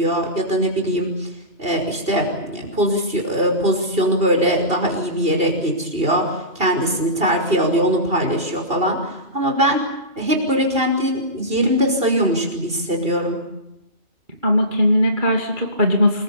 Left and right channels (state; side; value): late; left; 2.7 ms